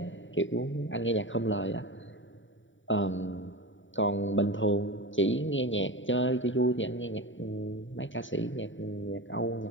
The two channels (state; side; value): late; right; 0.55 ms